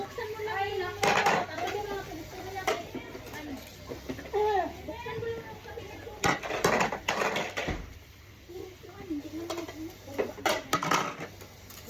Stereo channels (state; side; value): identical; both; correlation 1.00